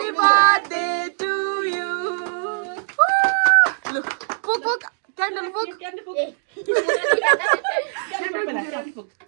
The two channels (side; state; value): left; silent; digital silence